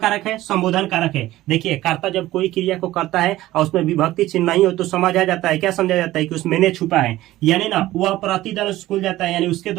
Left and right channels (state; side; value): quieter; left; 15.9 dB